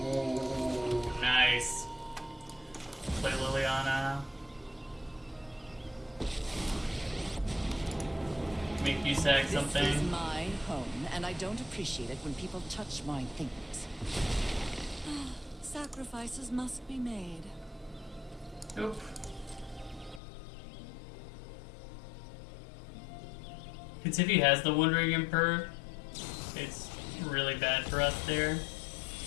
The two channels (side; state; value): right; drops out; at 20.2 s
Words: nice. Play Liliana. Make you sack something. This is my home, and I don't appreciate it when people touch my things. Sacrifices must be made. Nope. Because if he has the Wandering Emperor, it's really bad for us there.